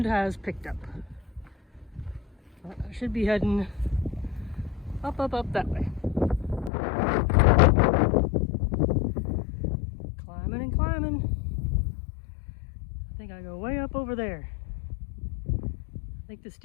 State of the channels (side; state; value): right; drops out; at 6.7 s